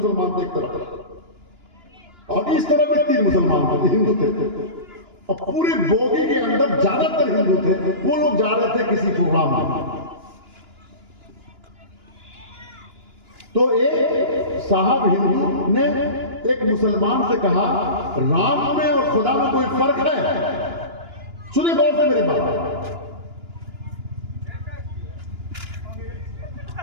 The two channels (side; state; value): left; late; 2.9 ms